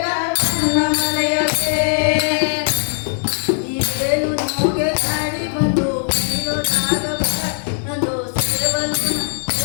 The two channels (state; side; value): silent; right; digital silence